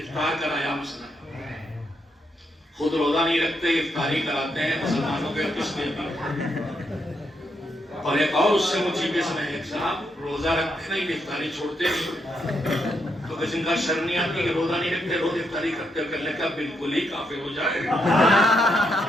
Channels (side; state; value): both; normal; correlation 0.79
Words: کرایا مثلا، خود روزہ نہیں رکھتے افطاری کراتے ہیں مسلمانوں کے کس میں بھی. اور ایک اور اس سے مجھے میں ایک صاحب روزہ رکھتے نہیں افطاری چھوڑتے نہیں، تو کسی کا شرم نہیں آتی کہ روزہ نہیں رکھتے روز افطاری کرتے، کرنے کا بالکل ہی کافر ہو جائے.